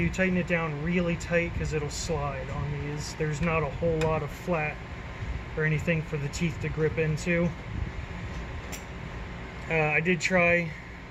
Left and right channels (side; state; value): both; identical; correlation 1.00